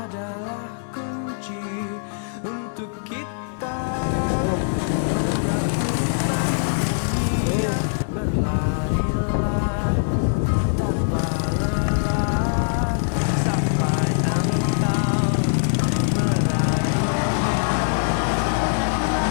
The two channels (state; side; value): silent; right; 61 dB below the other